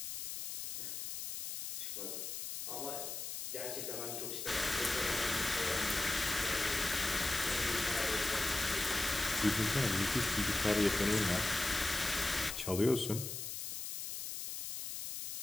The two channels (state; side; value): noise; left; hiss, 6 dB below the sound